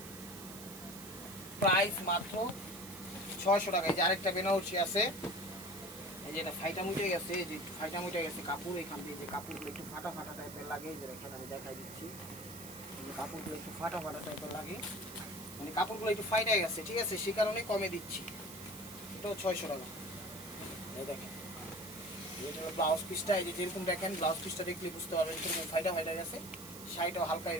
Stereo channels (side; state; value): right; noise; hiss, 13 dB below the sound